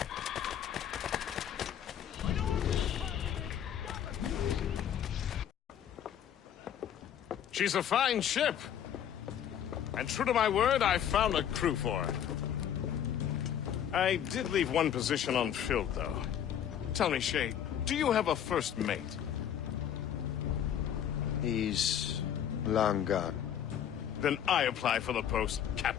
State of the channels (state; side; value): quieter; right; 9.6 dB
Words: She's a fine ship. And true to my word, I found a crew for her. I did leave one position unfilled, though. Tell me, Shay, do you have a first mate? He's long gone. Then I apply for the post,